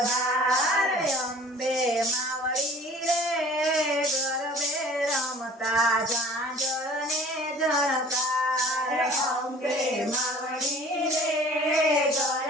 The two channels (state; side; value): normal; both; correlation 0.48